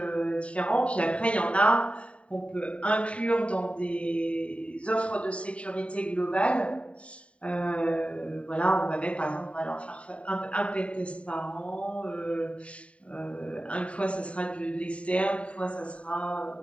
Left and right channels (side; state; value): right; late; 0.063 ms